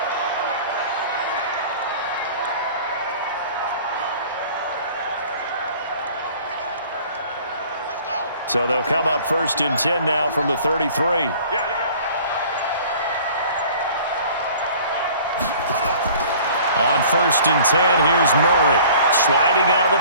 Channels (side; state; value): both; inverted; correlation -0.49